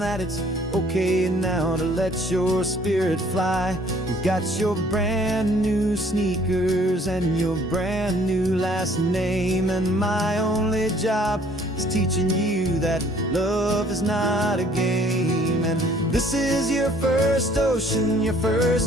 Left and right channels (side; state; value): both; normal; correlation 0.58